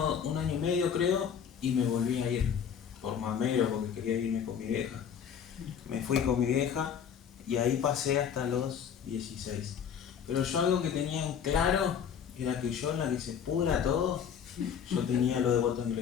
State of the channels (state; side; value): quieter; right; 7.9 dB